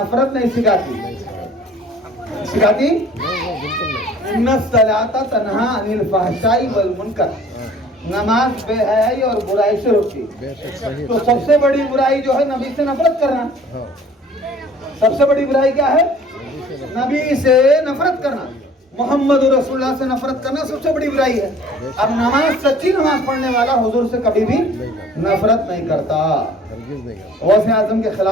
नहीं सिखाती, सिखाती इन्ना सलाता तन्हा अनिल फहशाई वल मुनकर, नमाज बेहयाई और बुराई से रोकती। तो सबसे बड़ी बुराई जो है नबी से नफरत करना। सबसे बड़ी बुराई क्या है? नबी से नफरत करना, मोहम्मद रसूलुल्लाह से नफरत करना सबसे बड़ी बुराई है। अब नमाज, सच्ची नमाज पढ़ने वाला हुजूर से कभी भी नफरत नहीं करता, गौसे आजम के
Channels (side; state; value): both; normal; correlation 0.51